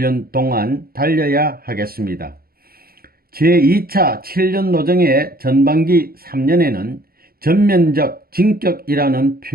동안 달려야 하겠습니다. 제2차 7년 노정의 전반기 3년에는 전면적 진격이라는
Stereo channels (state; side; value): late; left; 0.44 ms